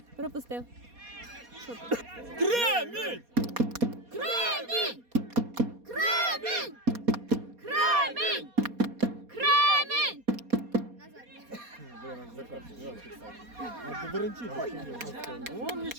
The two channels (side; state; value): left; late; 4.2 ms